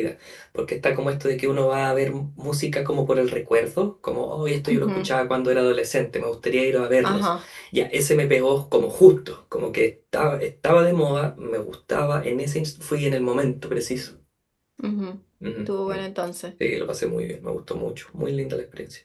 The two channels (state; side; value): identical; both; correlation 1.00